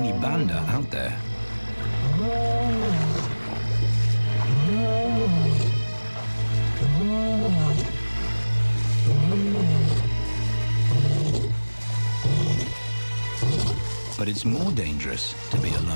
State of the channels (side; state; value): both; inverted; correlation -1.00